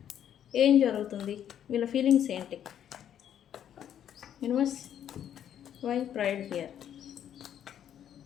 ఏం జరుగుతుంది, వీళ్ళ ఫీలింగ్స్ ఏంటి? Universe, why pride here?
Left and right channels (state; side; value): quieter; right; 9.9 dB